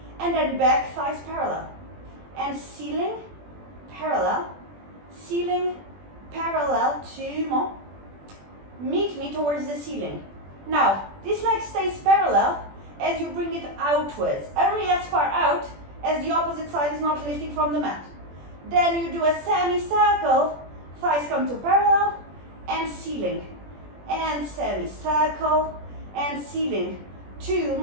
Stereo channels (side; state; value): left; late; 21 ms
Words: and then back thighs parallel. And ceiling, parallel, 2 more. Meet me towards the ceiling. Now, this leg stays parallel as you bring it outwards, only as far out as the opposite side is not lifting from the mat. Then you do a semicircle, thighs come to parallel, and ceiling. And semicircle, and ceiling. 2